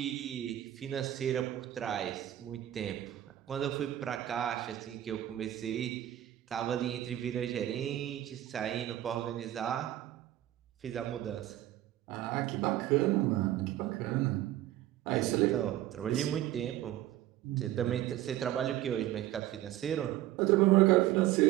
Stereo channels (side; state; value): left; quieter; 13.6 dB